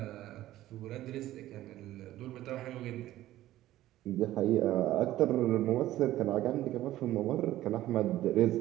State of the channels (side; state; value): left; quieter; 14.6 dB